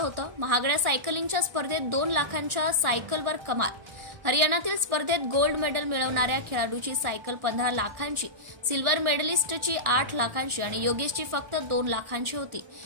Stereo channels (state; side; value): late; left; 1.6 ms